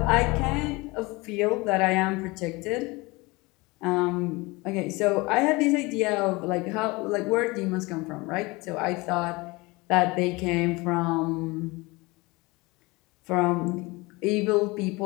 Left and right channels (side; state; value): right; quieter; 24.0 dB